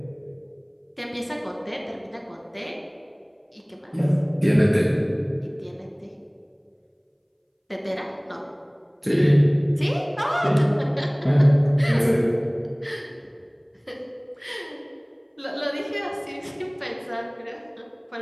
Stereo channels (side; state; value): both; identical; correlation 1.00